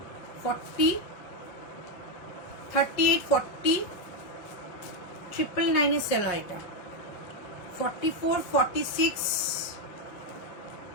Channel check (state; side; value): late; right; 5.6 ms